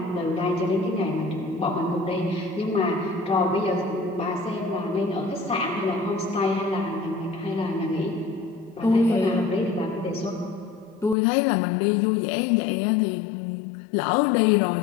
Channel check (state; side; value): drops out; right; at 11.2 s